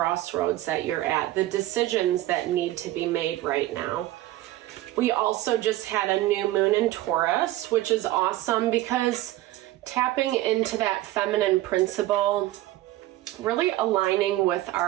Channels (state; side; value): quieter; left; 16.0 dB